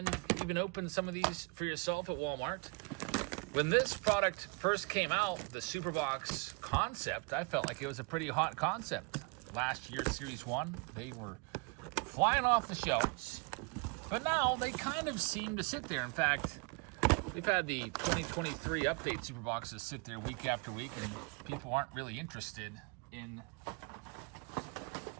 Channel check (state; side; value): quieter; left; 31.2 dB